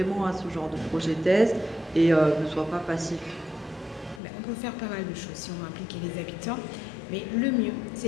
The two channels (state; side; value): drops out; right; at 4.2 s